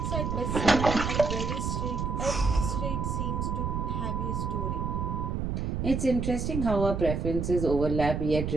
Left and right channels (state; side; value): noise; right; rumble, 2 dB below the sound